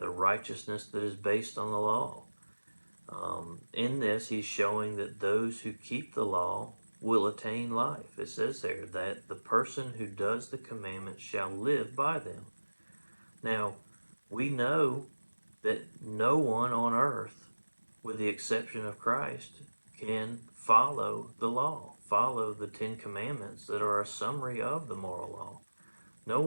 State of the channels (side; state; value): both; inverted; correlation -1.00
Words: the righteousness that is based on the law. In this, he's showing that those who keep the law will attain life. It says there that the person who does the commandments shall live by them. Now, we know that no one on earth, with the exception of Christ, can follow the law, follow the 10 Commandments that are a summary of the moral law. No